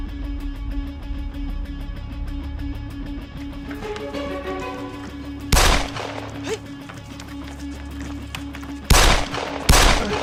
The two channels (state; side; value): identical; both; correlation 1.00